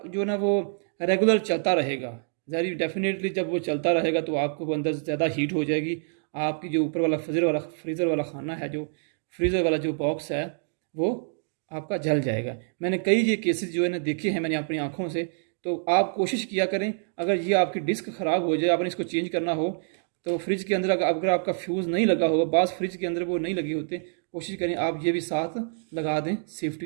जो है ना वो रेगुलर चलता रहेगा। ज़ाहिर डेफिनेटली जब वो चलता रहेगा तो आपको अंदर ज़्यादा हीट हो जाएगी। आपकी जो ऊपर वाला फ्रीज़र वाला खाना है, जो फ्रीज़र वाला जो बॉक्स है, वो आपका जल जाएगा। मैंने कई ये केसेस जो है ना देखे हैं मैंने अपनी आँखों से। तो आप कोशिश किया करें, अगर ये आपकी डिस्क ख़राब हो जाए, आपने इसको चेंज करना हो, तो फ्रिज के अंदर अगर आपका फ्यूज़ नहीं लगा होगा, बाज़ फ्रिज के अंदर वो नहीं लगे होते, कोशिश करें आप ये भी साथ लगा दें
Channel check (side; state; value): left; silent; digital silence